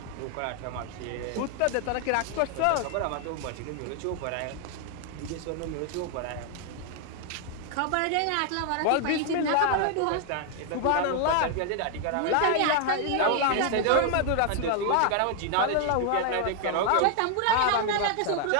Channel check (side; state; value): both; different; correlation 0.00